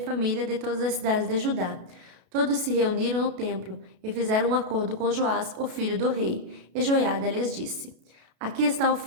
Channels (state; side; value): late; left; 32 ms